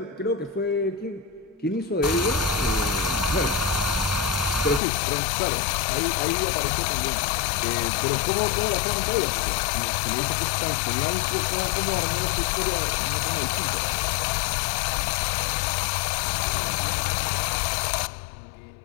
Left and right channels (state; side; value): drops out; right; at 4.8 s